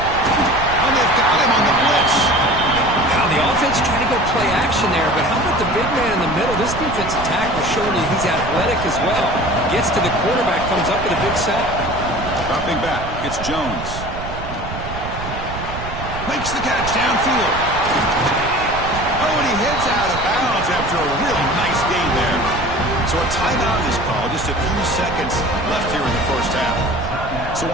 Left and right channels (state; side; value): noise; right; rumble, 9 dB below the sound